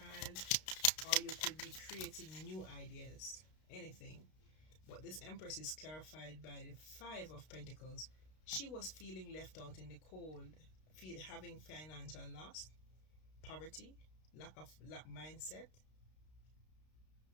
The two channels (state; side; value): late; right; 32 ms